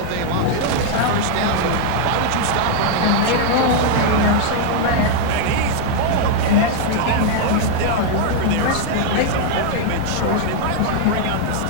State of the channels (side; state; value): both; different; correlation 0.00